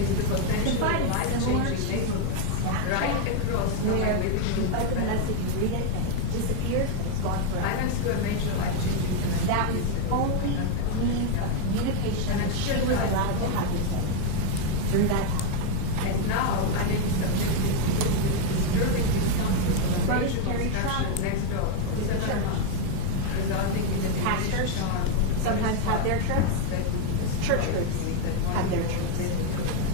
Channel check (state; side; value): different; both; correlation 0.01